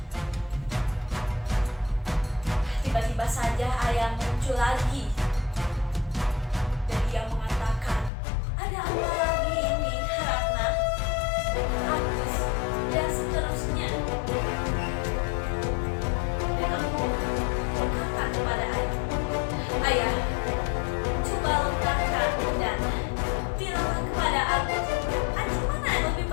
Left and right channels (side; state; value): right; drops out; at 8.1 s